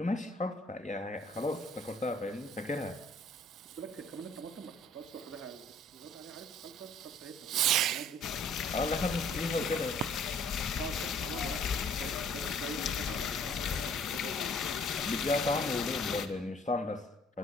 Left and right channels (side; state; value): both; normal; correlation 0.58